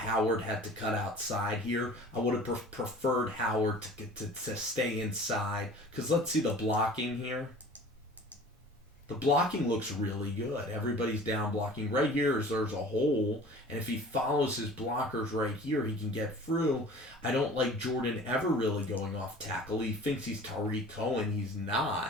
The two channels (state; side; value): normal; both; correlation 0.44